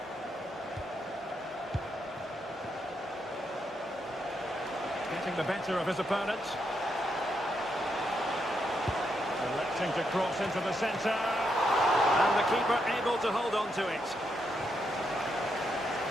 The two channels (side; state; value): both; normal; correlation 0.80